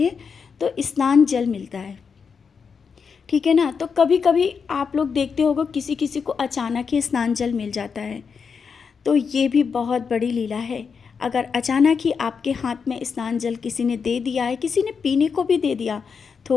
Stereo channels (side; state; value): right; quieter; 5.9 dB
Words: तो स्नान जल मिलता है, ठीक है ना। तो कभी कभी आप लोग देखते होगे किसी किसी को अचानक ही स्नान जल मिल जाता है, तो ये भी बहुत बड़ी लीला है। अगर अचानक ही आपके हाथ में स्नान जल किसी ने दे दिया है, किसी ने पीने को भी दे दिया,